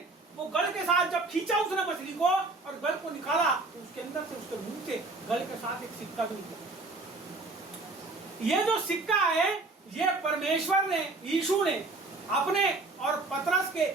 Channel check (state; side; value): quieter; left; 3.3 dB